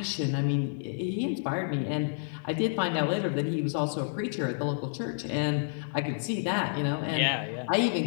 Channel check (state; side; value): silent; right; digital silence